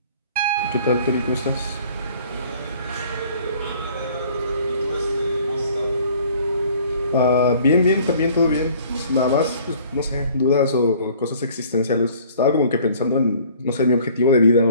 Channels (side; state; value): both; inverted; correlation -0.54